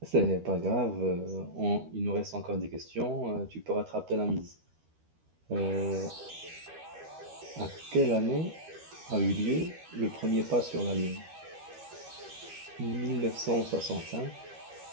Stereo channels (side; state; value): left; late; 13 ms